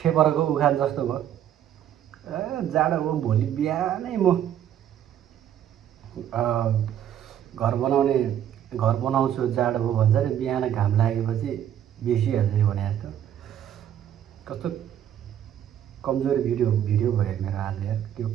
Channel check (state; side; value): quieter; left; 10.4 dB